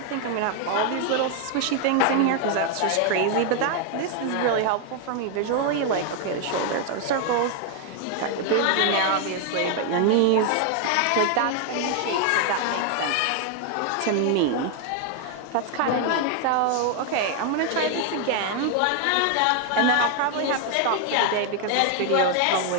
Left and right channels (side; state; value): both; different; correlation 0.00